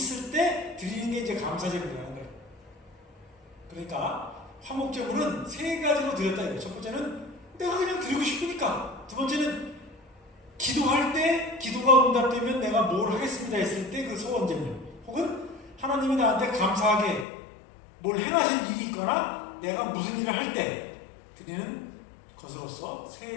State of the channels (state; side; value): drops out; right; at 17.2 s